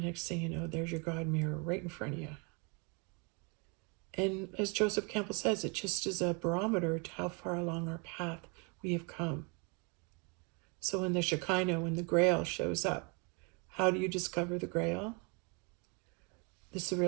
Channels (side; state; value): left; quieter; 33.4 dB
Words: thing you know, there's your God mirror right in front of you. And as Joseph Campbell says, it just is a barometer to how far along our path we have come. So when the Shekinah, when the Grail shows up, how do you discover the Grail? It's the